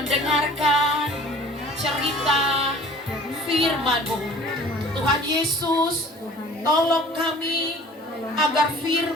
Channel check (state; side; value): normal; both; correlation 0.48